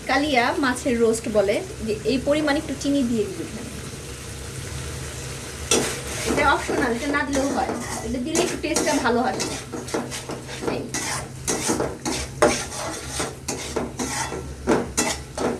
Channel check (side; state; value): both; identical; correlation 1.00